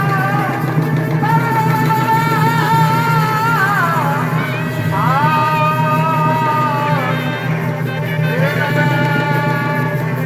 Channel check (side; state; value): both; identical; correlation 1.00